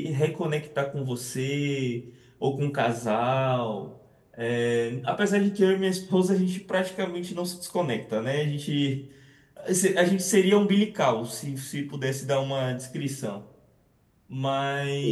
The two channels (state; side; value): identical; both; correlation 1.00